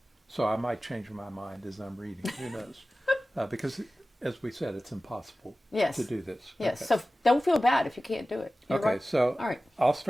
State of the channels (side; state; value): both; normal; correlation 0.96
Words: So I might change my mind as I'm reading. Who knows? Because, as we said, it's impossible Yes. to do this. Yes. Okay. So don't feel bad if you can't do it. You're Okay, right. so All right. I'll